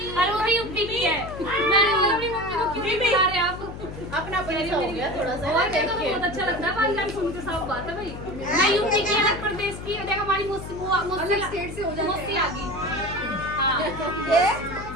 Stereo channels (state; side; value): noise; left; hum, 11 dB below the sound